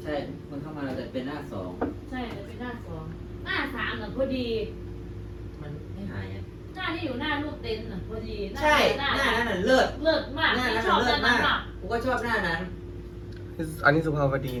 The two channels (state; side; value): identical; both; correlation 1.00